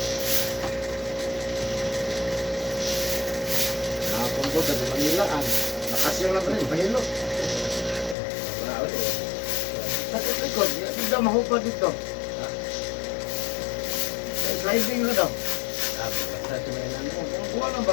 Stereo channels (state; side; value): drops out; right; at 8.2 s